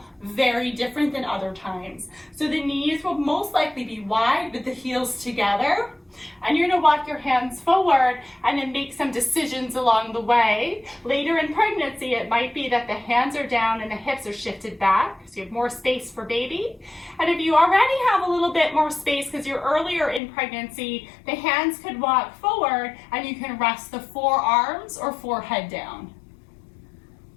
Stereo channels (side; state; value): right; drops out; at 20.2 s